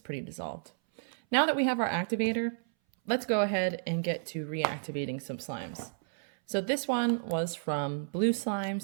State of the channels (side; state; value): left; silent; 57 dB below the other